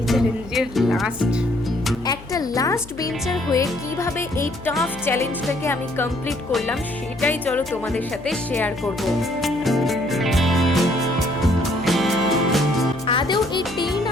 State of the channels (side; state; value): left; noise; hum, 18 dB below the sound